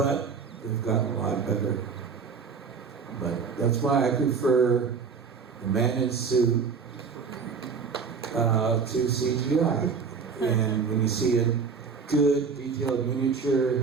they've gotten a lot better. But that's why I prefer the man in suit to CGI. And when you see a good detailed miniature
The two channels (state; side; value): quieter; left; 5.5 dB